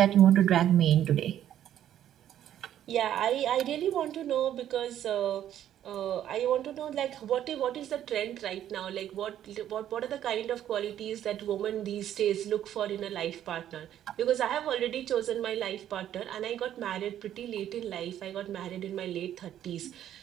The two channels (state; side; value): quieter; left; 11.1 dB